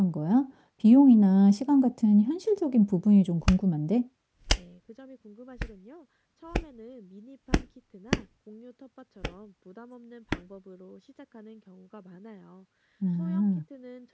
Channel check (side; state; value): both; identical; correlation 1.00